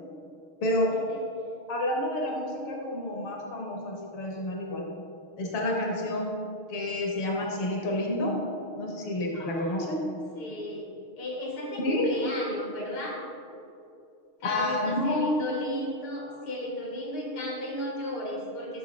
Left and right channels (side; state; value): right; late; 6.4 ms